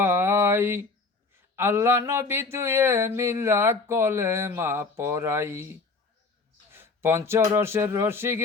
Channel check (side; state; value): right; quieter; 4.0 dB